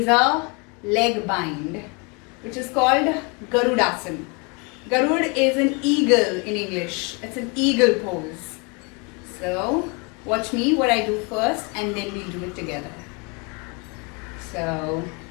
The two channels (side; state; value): right; quieter; 31.7 dB